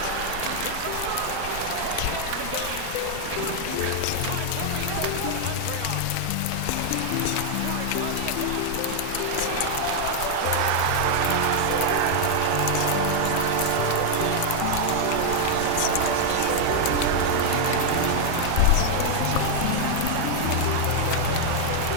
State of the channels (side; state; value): both; different; correlation 0.00